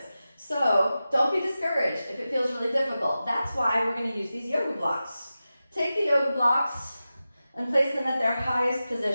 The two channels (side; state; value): both; inverted; correlation -0.94